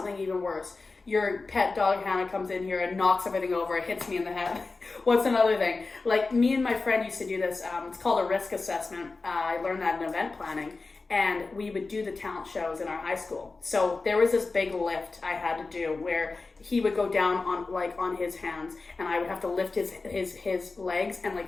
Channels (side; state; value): right; quieter; 3.8 dB